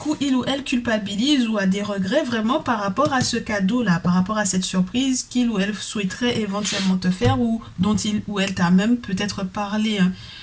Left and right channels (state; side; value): identical; both; correlation 1.00